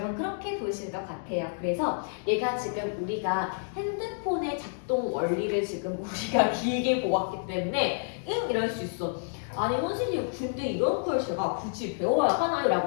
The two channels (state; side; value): silent; right; digital silence